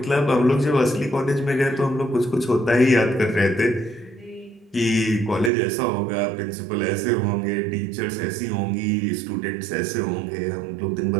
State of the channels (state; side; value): drops out; left; at 5.5 s